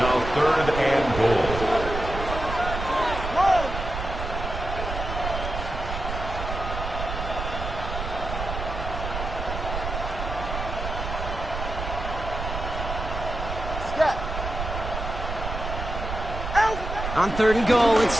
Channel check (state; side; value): noise; right; rumble, 5 dB below the sound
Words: 3rd and goal. On 3rd and goal,